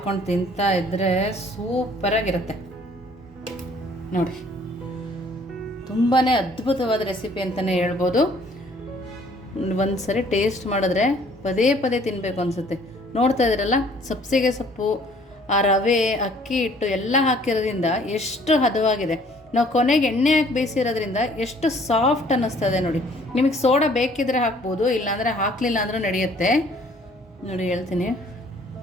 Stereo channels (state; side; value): normal; both; correlation 0.58